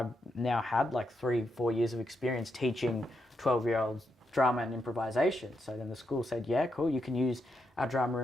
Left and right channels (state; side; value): normal; both; correlation 0.82